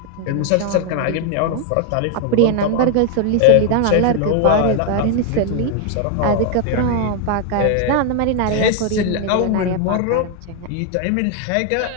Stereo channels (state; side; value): different; both; correlation 0.00